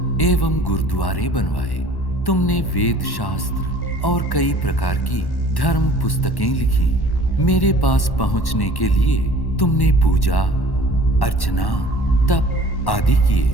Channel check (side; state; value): right; late; 1.1 ms